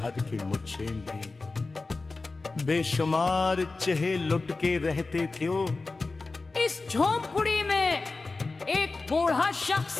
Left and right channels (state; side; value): quieter; right; 3.6 dB